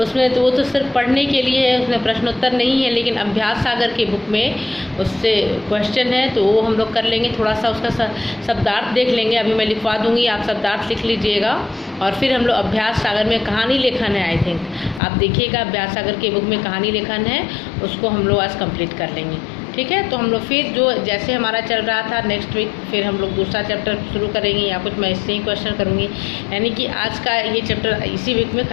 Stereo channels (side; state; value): right; drops out; at 15.0 s